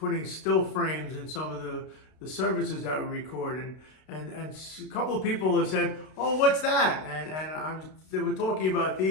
still frames in some of the services that we record, and a couple of people have said, "Oh, what's that?" And they were talking about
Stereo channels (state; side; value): late; right; 32 ms